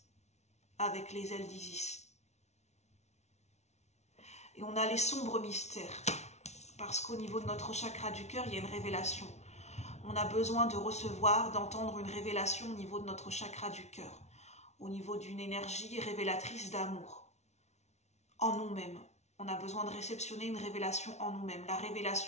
avec les ailes d'Isis. Et on a les sombres mystères, parce qu'au niveau de notre chakra du cœur, il y a une révélation. On a besoin de recevoir, d'entendre une révélation au niveau de notre chakra du cœur, au niveau d'une énergie révélatrice d'amour en nous-mêmes. On a besoin de réceptionner une révélation en nous-mêmes, la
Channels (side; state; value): right; late; 0.32 ms